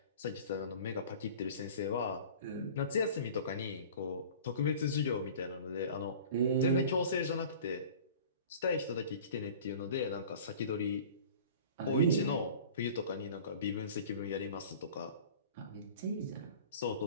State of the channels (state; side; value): inverted; both; correlation -0.42